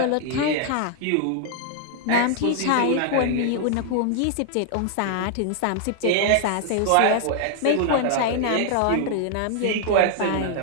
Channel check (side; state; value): both; different; correlation 0.00